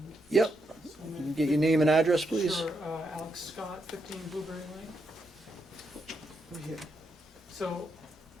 Yep. So You can get your name and address, please? Sure, Alex Scott, 15 Blueberry Lane. Over here. So,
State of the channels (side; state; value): both; normal; correlation 0.81